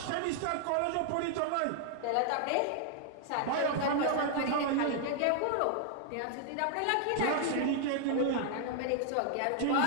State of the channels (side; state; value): both; different; correlation 0.00